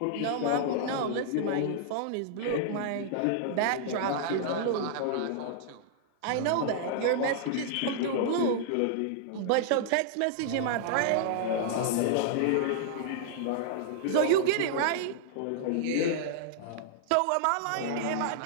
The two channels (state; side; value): different; both; correlation -0.01